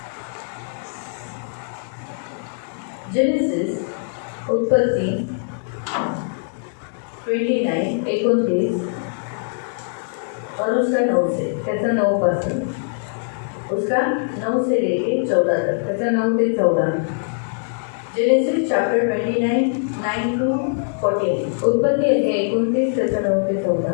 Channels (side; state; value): right; silent; digital silence